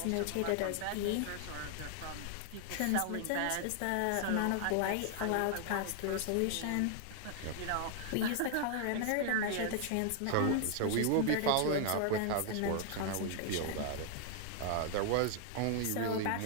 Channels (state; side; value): different; both; correlation 0.00